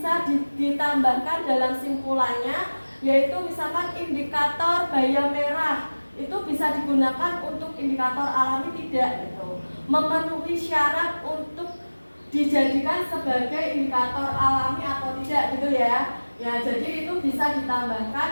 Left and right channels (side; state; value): both; inverted; correlation -1.00